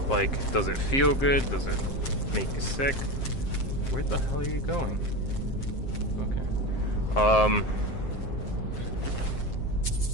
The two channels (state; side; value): late; right; 7.6 ms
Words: Like, does it feel good? Does it make you sick? Where the hell are you going? Okay.